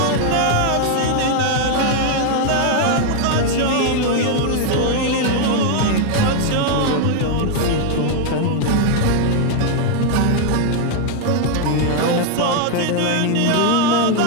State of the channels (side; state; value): both; different; correlation 0.00